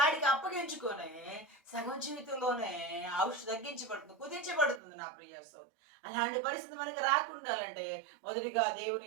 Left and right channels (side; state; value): left; drops out; at 4.8 s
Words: అప్పగించుకొని సగం జీవితంలోనే ఔషధం తగ్గించబడుతుంది, కుదించబడుతుంది. నా ప్రియ సోదరి, అలాంటి పరిస్థితి మనకి రాకుండాలంటే మొదటిగా